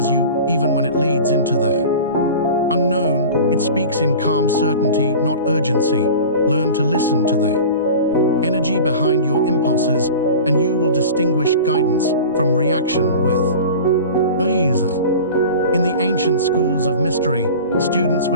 you even when it leads into the unknown. It speaks in calm certainty, not urgency. Learn to listen to the energy behind your impulses, and you will distinguish guidance from reaction with ease. In the ancient schools of mystery, students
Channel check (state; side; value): inverted; both; correlation -0.36